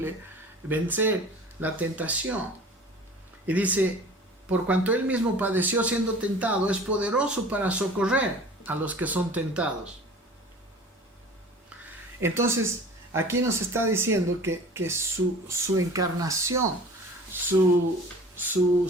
vencer la tentación. Y dice, por cuanto él mismo padeció siendo tentado, es poderoso para socorrer a los que son tentados. Entonces, aquí nos está diciendo que su encarnación, su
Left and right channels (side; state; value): both; normal; correlation 0.43